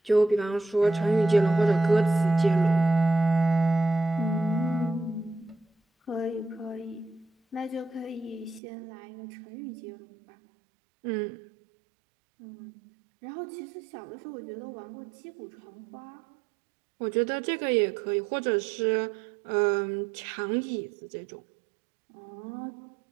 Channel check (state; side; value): drops out; left; at 8.6 s